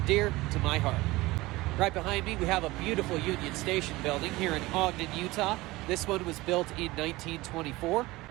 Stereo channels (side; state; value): left; quieter; 20.0 dB